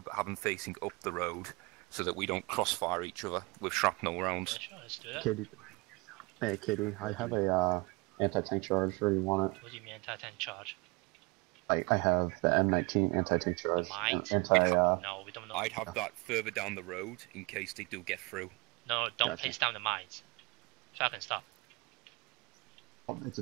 but have them facing up the road, so that we don't crossfire each other with shrapnel rounds. Yeah, sure, let's do that. Kitty. Hey, Kitty, I have a anti-tank charge. Where do you want it? What do you mean anti-tank charge? I have the M19 anti-tank charge. No, we don't know. I'd have that further down the road in case they do get through. No, don't Gotcha. place down the mines. Falcon, stop. It's a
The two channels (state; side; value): quieter; left; 27.0 dB